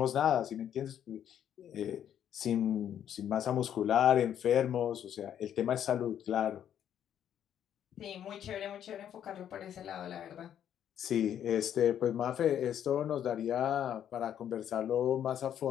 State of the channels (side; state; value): right; quieter; 9.8 dB